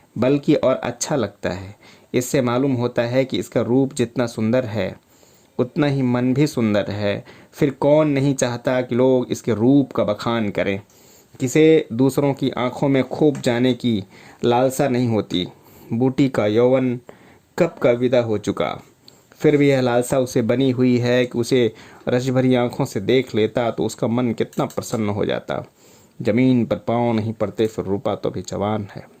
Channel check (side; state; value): both; identical; correlation 1.00